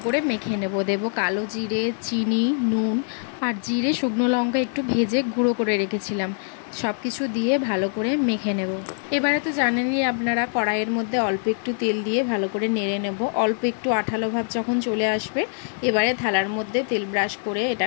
করে মেখে নেব। দেবো কালো জিরে, চিনি, নুন আর জিরে, শুকনো লঙ্কা একটু ভেজে গুঁড়ো করে রেখেছিলাম। সব কিছু দিয়ে ভালো করে মেখে নেব। এবারে তো জানেনই আপনারা, কড়াইয়ের মধ্যে অল্প একটু তেল দিয়ে ভালো করে নেড়ে নেব। অল্প একটু আঠালো ভাব যখন চলে আসবে, এবারে থালার মধ্যে তেল ব্রাশ করে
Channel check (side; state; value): right; silent; 63 dB below the other